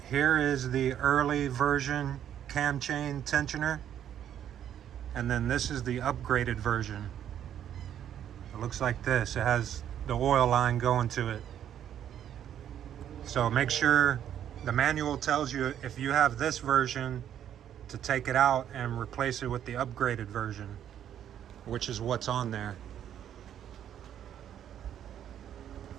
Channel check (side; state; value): left; quieter; 10.1 dB